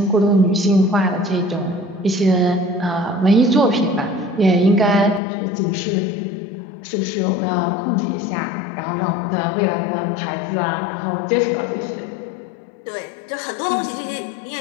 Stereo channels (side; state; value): right; drops out; at 5.2 s